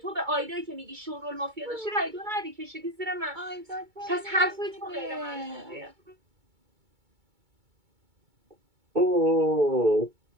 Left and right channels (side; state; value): left; late; 2.2 ms